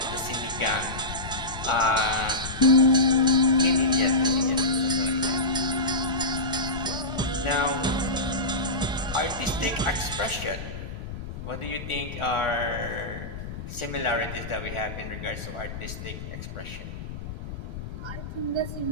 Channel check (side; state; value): left; noise; rumble, 9 dB below the sound